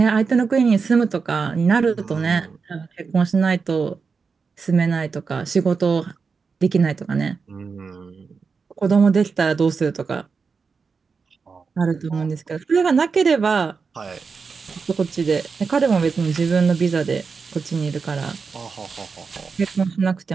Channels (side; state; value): left; quieter; 5.1 dB